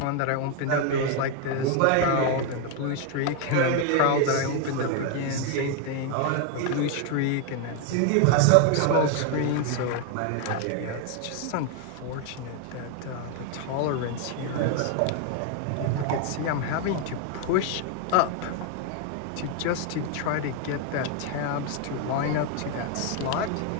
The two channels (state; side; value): different; both; correlation 0.01